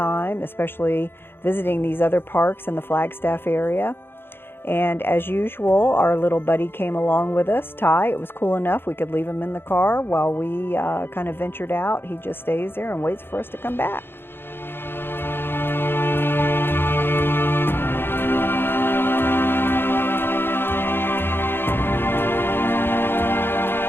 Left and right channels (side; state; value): right; late; 0.10 ms